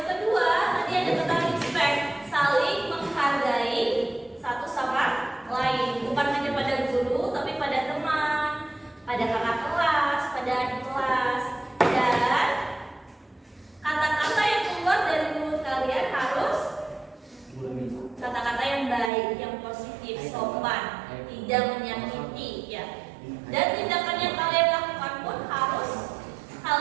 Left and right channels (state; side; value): drops out; left; at 19.1 s